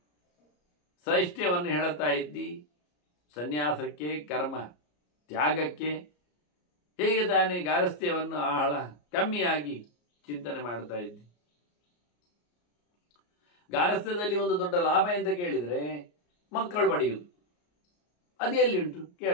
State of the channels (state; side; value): late; right; 34 ms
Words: ಶ್ರೈಷ್ಠ್ಯವನ್ನು ಹೇಳುತ್ತಾ ಇದ್ದಿ ಸನ್ಯಾಸಕ್ಕೆ, ಕರ್ಮ ತ್ಯಾಗಕ್ಕೆ, ಹೇಗೆ ತಾನೇ ಗಾರಸ್ಥ್ಯವನ್ನು ಆಳ ಕಮ್ಮಿಯಾಗಿ ಚಿಂತನೆ ಮಾಡ್ತಾ ಇದ್ದಿ. ಗಾರಸ್ಥ್ಯದಲ್ಲಿ ಒಂದು ದೊಡ್ಡ ಲಾಭ ಅಂತ ಕೇಳಿದರೆ ಮಕ್ಕಳು ಪಡೆಯುವುದು. ಅದು ಎಲ್ಲಿ ಉಂಟು